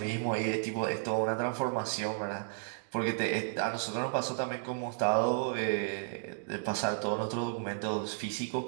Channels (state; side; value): silent; left; digital silence